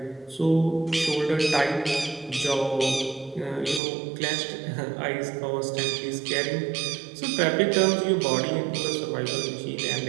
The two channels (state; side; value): drops out; left; at 3.8 s